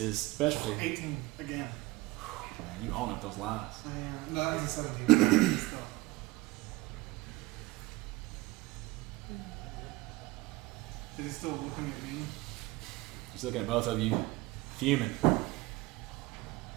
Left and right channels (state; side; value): quieter; left; 20.4 dB